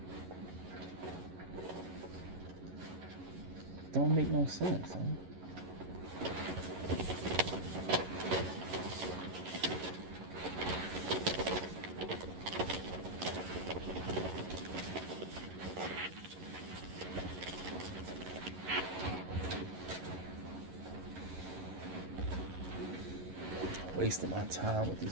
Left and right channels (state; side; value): late; left; 11 ms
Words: Don't make no sense, huh? Wasting my time with